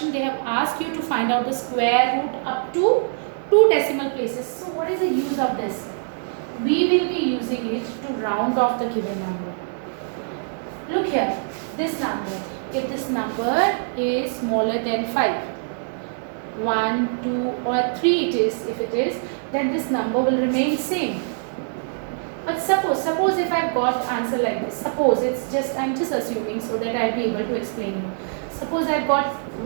they have asked you to find out the square root up to 2 decimal places. So what is the use of this? We will be using it to round off the given number. Look here, this number. If this number is smaller than 5, 1, 2 or 3 it is, if it is, then this number will remain same. But suppose if I've got answer like this, suppose I'm just assuming so that I'll be able to explain you. Suppose I've got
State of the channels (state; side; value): silent; left; digital silence